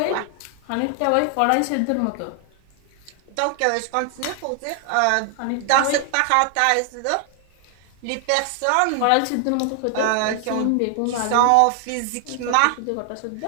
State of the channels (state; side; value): different; both; correlation 0.00